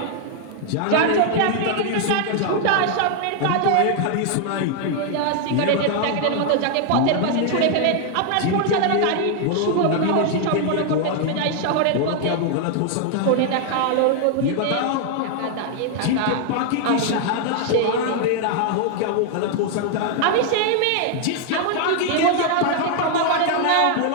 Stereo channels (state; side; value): different; both; correlation 0.00